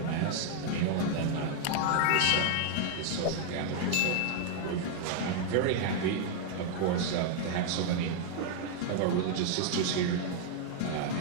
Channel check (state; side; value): different; both; correlation 0.00